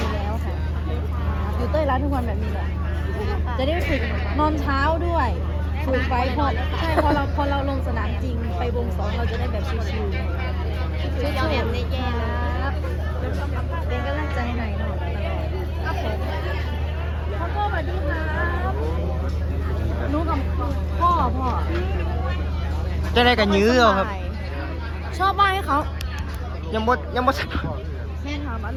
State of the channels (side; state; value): both; identical; correlation 1.00